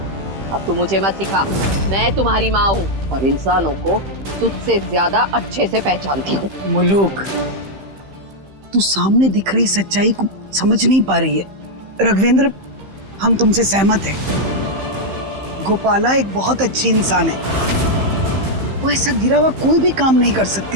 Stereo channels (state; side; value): late; left; 15 ms